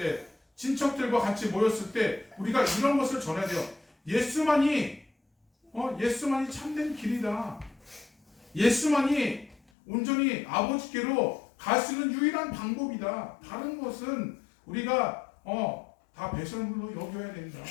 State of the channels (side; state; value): right; drops out; at 9.6 s